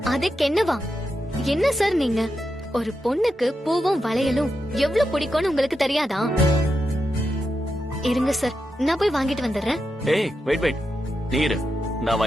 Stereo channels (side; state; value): both; normal; correlation 0.87